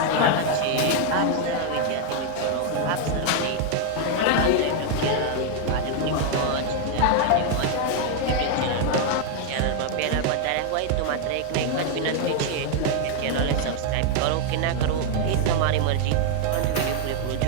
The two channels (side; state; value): both; different; correlation 0.00